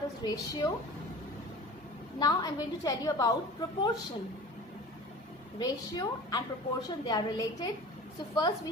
is ratio. Now I'm going to tell you about proportion. Ratio and proportion, they are related. So first we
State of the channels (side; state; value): both; normal; correlation 0.39